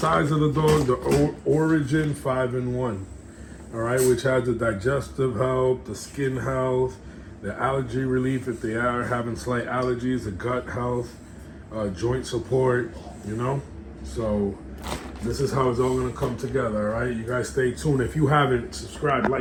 of the dog, the Origin 5-in-1, all right, which has the digestive health, the skin health, the allergy relief if they are having slight allergies, the gut health, joint support, So this is how it's all gonna come together, all right? You guys stay tuned. If you haven't, subscribe,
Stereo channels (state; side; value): identical; both; correlation 1.00